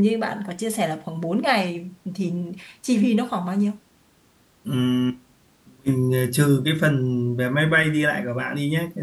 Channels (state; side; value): identical; both; correlation 1.00